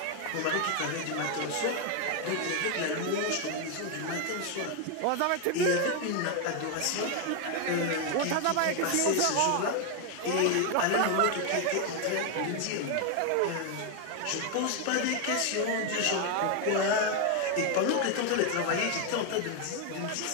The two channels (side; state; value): both; different; correlation 0.01